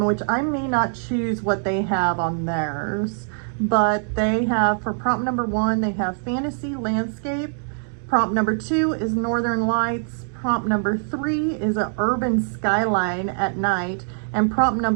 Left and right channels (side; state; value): left; silent; 59 dB below the other